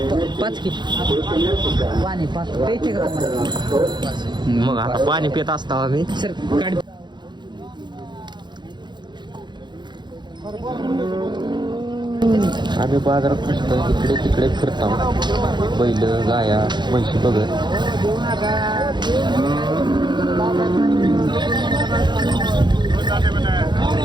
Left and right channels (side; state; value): left; late; 0.22 ms